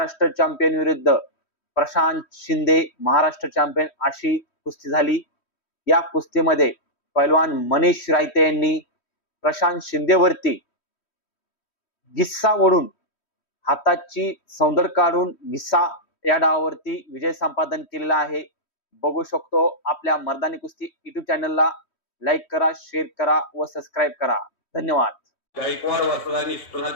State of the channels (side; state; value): right; late; 3.1 ms